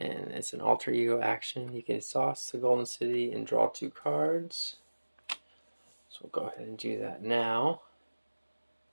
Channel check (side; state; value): both; inverted; correlation -1.00